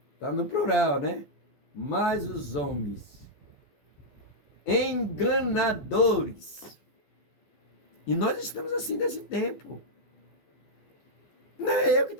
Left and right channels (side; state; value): right; late; 14 ms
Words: tá no plural, né? Mas os homens, enganadores. E nós estamos assim nesse tempo. Não é eu que